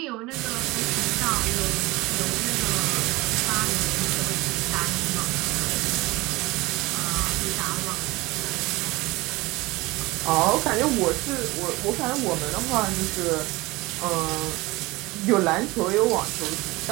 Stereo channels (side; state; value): left; quieter; 21.7 dB